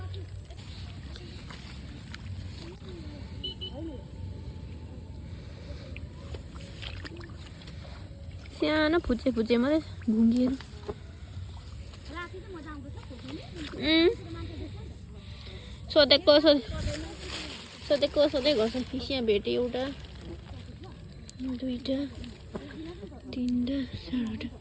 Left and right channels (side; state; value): both; identical; correlation 1.00